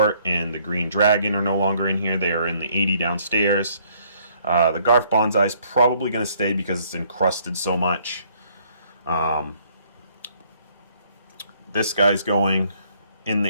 and the Green Dragon are no longer in here. They are in the 80 downstairs. The Garf Bonsai is probably going to stay because it's encrusted so much. This guy's going in the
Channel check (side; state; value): both; inverted; correlation -0.64